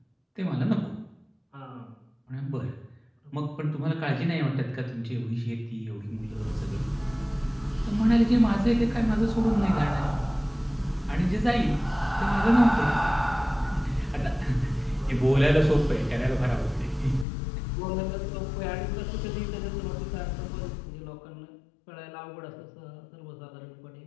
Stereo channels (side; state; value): right; drops out; at 17.2 s